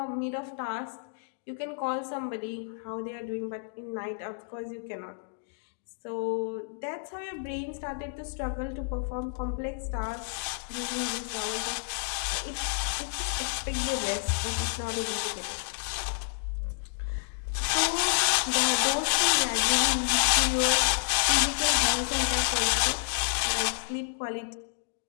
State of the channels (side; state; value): right; silent; digital silence